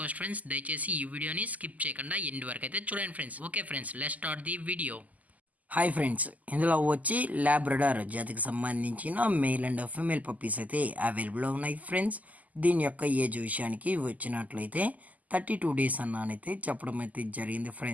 ఫ్రెండ్స్, దయచేసి ఈ వీడియోని స్కిప్ చేయకుండా ఎండ్ వరకు అయితే చూడండి friends. Okay friends, let's start the video. Hi friends, ఇందులో వచ్చి ల్యాబ్రడార్ జాతికి సంబంధించిన మేల్ అండ్ ఫీమేల్ పప్పీస్ అయితే అవైలబుల్లో ఉన్నాయి ఫ్రెండ్స్. దీని యొక్క ఏజ్ విషయానికి వచ్చినట్లయితే 32 డేస్ అన్నానైతే చెప్పడం అయితే జరిగింది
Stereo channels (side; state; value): left; late; 0.077 ms